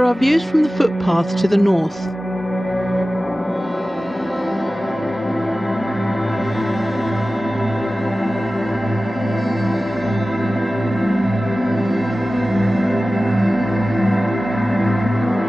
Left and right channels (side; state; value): both; normal; correlation 0.96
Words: are views from the footpaths to the north.